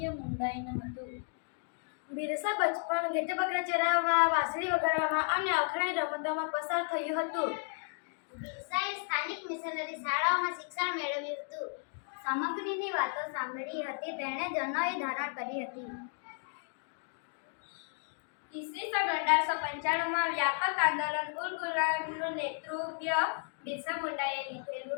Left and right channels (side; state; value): right; silent; 55 dB below the other